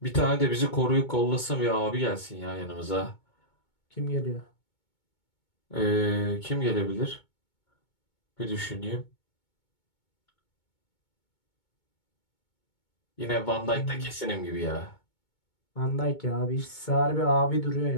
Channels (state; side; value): late; right; 2.2 ms